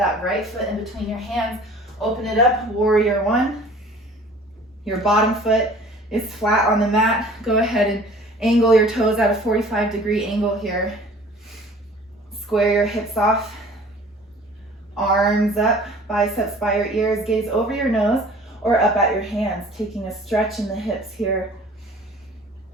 right foot in between your hands. Open it up, warrior one. Your bottom foot is flat on the mat. Go ahead and angle your toes at a 45-degree angle here. Square your hips off. Arms up, biceps by your ears, gaze over your nose or up at your hands, taking a stretch in the hips here.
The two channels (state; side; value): normal; both; correlation 0.49